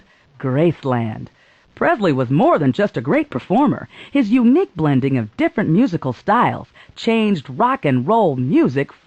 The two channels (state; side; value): identical; both; correlation 1.00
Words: Graceland. Presley was more than just a great performer. His unique blending of different musical styles changed rock and roll music